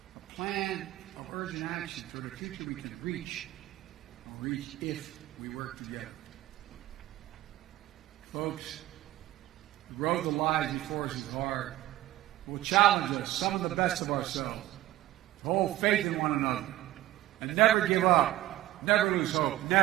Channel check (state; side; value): quieter; left; 15.4 dB